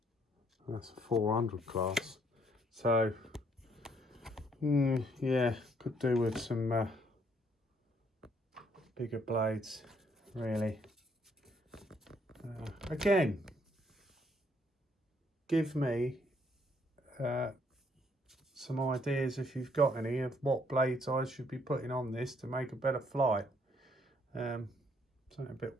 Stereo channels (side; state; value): both; normal; correlation 0.68